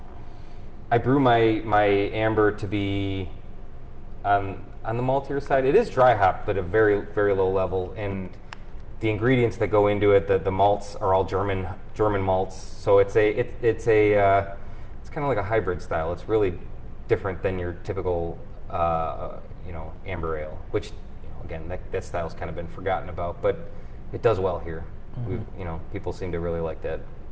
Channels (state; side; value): identical; both; correlation 1.00